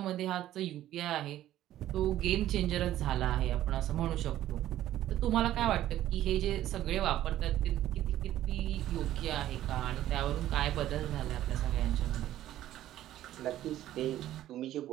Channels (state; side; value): quieter; left; 13.2 dB